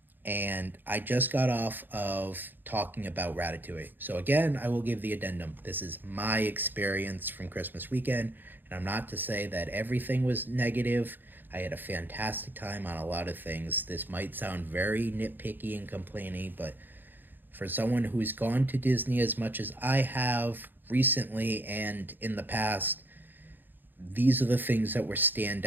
and I just got off of talking about Ratatouille. So, again, I will give the addendum. This is my experience from Christmas weekend, and I'm not to say that everything was negative. I had a fantastic time on a lot of things. This might sound very nitpicky and complaining, but for someone who's gone to Disney as much as I have recently and in the past, these are the things that were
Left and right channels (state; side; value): late; left; 0.091 ms